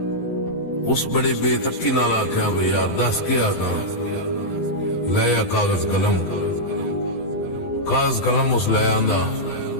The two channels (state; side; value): late; right; 12 ms